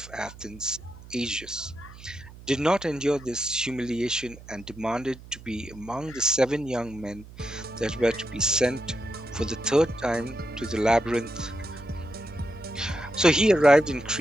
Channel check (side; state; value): right; noise; hum, 18 dB below the sound